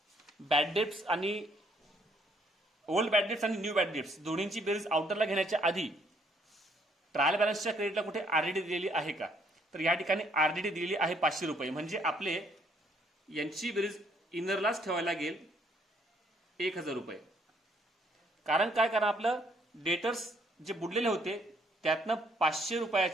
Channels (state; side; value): normal; both; correlation 0.67